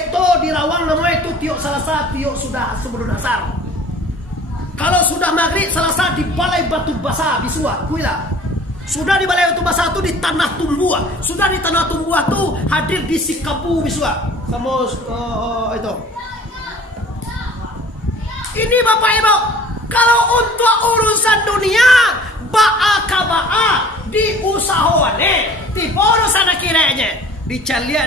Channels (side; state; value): both; normal; correlation 0.48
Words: di Rawang namanya itu tiok Salasa tiok sudah sebelum asar. Kalau sudah maghrib Selasa di balai batu basah Bisua, kuila. Sudah di balai batu basah itu di tanah tumbuah. Sudah di tanah tumbuah itu hadir di Sikapu Bisua. Sama itu. Ini Bapak Ibu, kalau untuk urusan dunia ba'a di usahawane, tipe urusan kiranya.